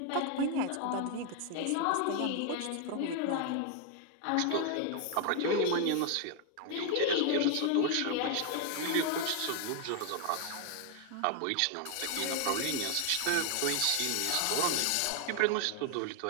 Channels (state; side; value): different; both; correlation 0.00